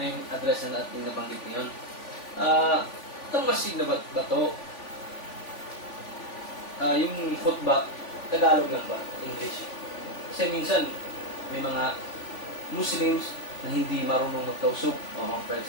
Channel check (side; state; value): right; late; 3.5 ms